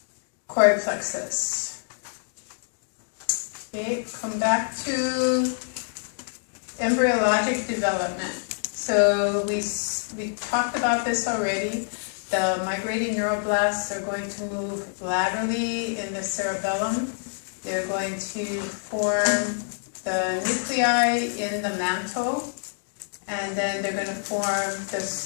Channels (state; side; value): silent; right; digital silence